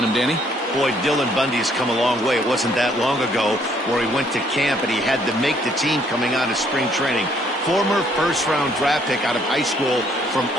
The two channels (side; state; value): both; normal; correlation 0.66